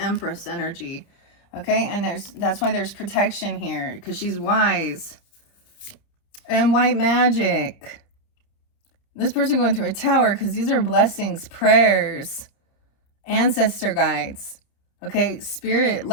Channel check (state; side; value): late; right; 30 ms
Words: energy. Okay, and that's why there's protection here, because she's wise. And white magic. This person going through a tower, because these are blessings, prayers, ancestor guides. Okay, spirit,